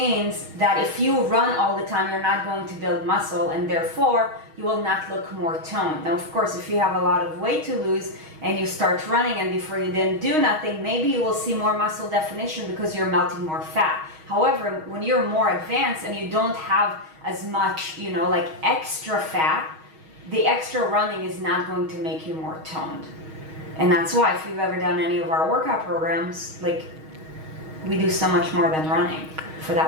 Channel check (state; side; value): late; left; 6.4 ms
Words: that if you run all the time, you're not going to build muscle, and therefore you will not look more toned. Now, of course, if you have a lot of weight to lose and you start running and before you didn't do nothing, maybe you will see more muscle definition because you're melting more fat. However, when you're more advanced and you don't have as much, like extra fat, the extra running is not going to make you more toned. And that's why, if you've ever done any of our workout programs, like, we do so much more than running for